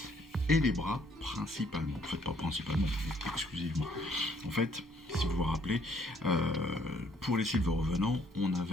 et les bras principalement. En fait, pas principalement, mais exclusivement. En fait, si vous vous rappelez, pour les silver revenants, on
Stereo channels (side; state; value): both; normal; correlation 0.65